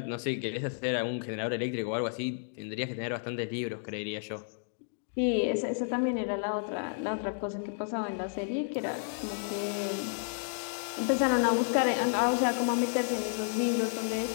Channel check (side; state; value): right; silent; digital silence